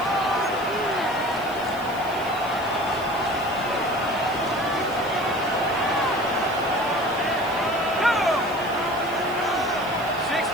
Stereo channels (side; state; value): left; noise; hiss, 20 dB below the sound